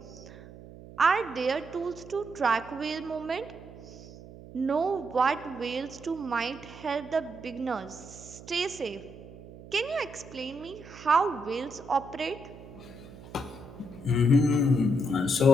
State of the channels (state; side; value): noise; right; hum, 17 dB below the sound